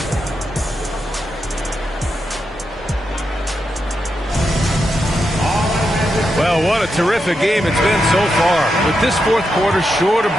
Well, what a terrific game it's been so far. With this fourth quarter sure to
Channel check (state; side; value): normal; both; correlation 0.85